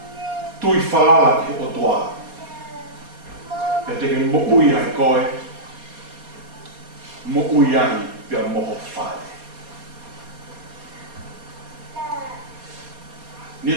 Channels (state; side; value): late; left; 4.2 ms